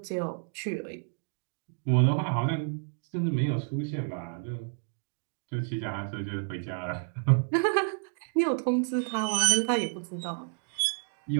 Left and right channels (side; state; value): left; silent; 58 dB below the other